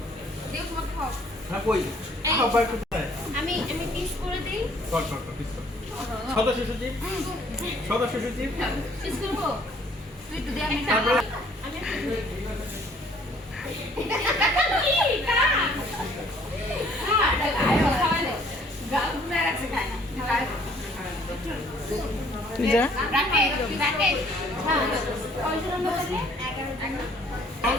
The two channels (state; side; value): normal; both; correlation 0.59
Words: হ্যাঁ কই আবার কোথায়? আমি পিস করে দেই। কর কর কর পিস কর। সদস্য সচিব, সদস্য সচিব পিস করব। তুই তো দে আমি তারপরে আমি যা